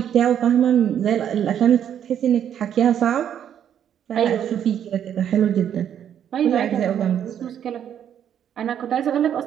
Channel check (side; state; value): left; quieter; 9.4 dB